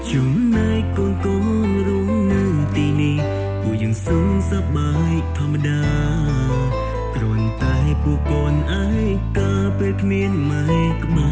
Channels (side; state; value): both; identical; correlation 1.00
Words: ចំណែកកូនកូនរស់នៅទីនេះពួកយើងសុខសប្បាយធម្មតាគ្រាន់តែពួកកូនឯកាពេលគ្មានម៉ែក្បែ